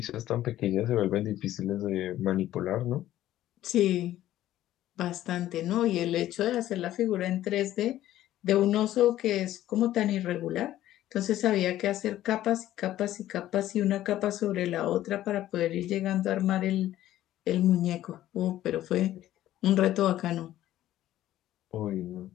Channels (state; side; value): quieter; right; 13.6 dB